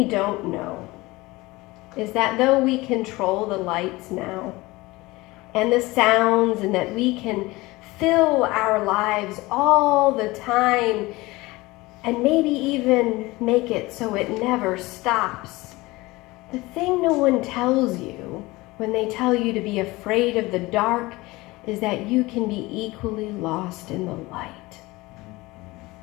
don't know is that though we control the lights now and the sounds, and that we can fill our lives all the time and maybe even make it so it never stops, the thing no one tells you when they tell you to be afraid of the dark is that you can be equally lost in the light.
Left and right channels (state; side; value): quieter; right; 21.1 dB